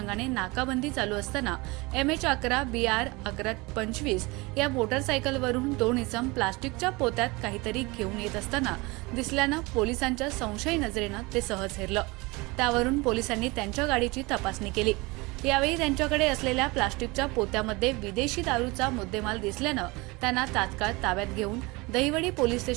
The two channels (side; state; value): left; quieter; 24.3 dB